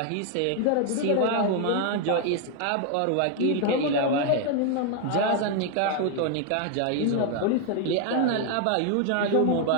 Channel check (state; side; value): different; both; correlation 0.01